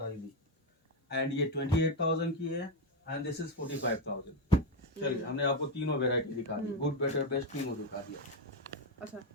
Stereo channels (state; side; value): normal; both; correlation 0.08